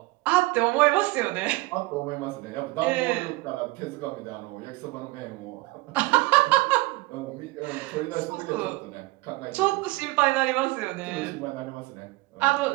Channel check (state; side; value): quieter; left; 21.8 dB